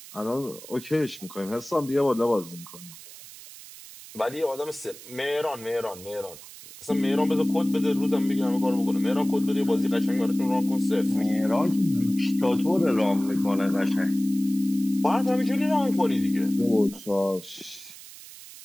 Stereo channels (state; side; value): noise; right; hiss, 17 dB below the sound